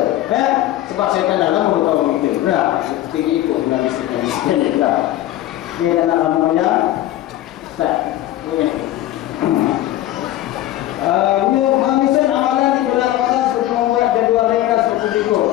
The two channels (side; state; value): right; quieter; 14.3 dB